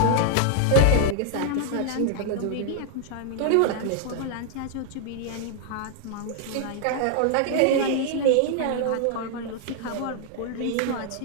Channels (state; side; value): different; both; correlation 0.00